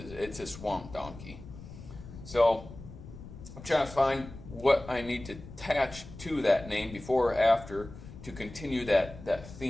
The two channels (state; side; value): noise; left; rumble, 15 dB below the sound